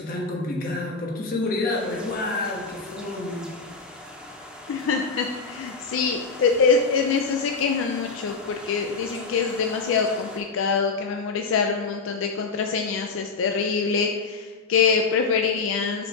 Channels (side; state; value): right; quieter; 4.6 dB